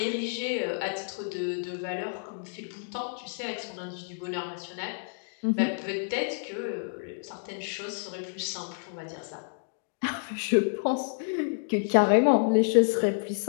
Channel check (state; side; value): silent; right; digital silence